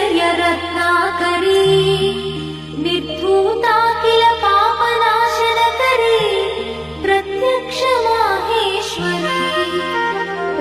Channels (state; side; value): identical; both; correlation 1.00